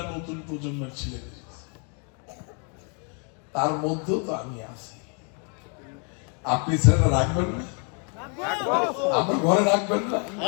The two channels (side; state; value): right; quieter; 38.9 dB